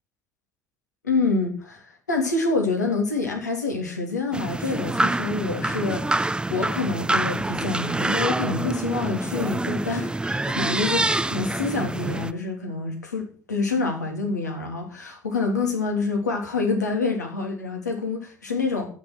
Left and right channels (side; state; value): both; normal; correlation 0.35